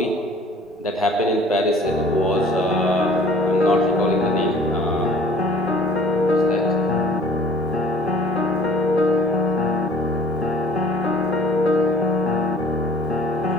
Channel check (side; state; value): both; normal; correlation 0.50